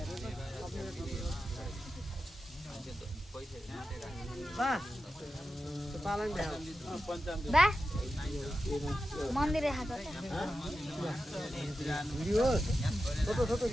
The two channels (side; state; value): both; normal; correlation 0.91